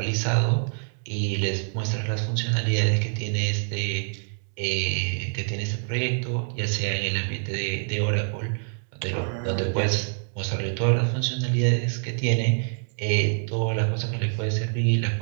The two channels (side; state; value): left; silent; 58 dB below the other